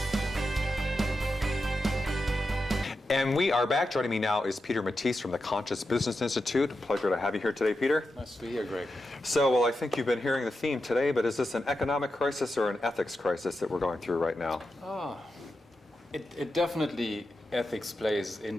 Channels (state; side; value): normal; both; correlation 0.89